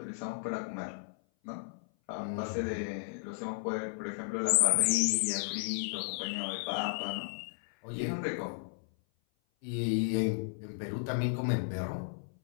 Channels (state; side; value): silent; right; 55 dB below the other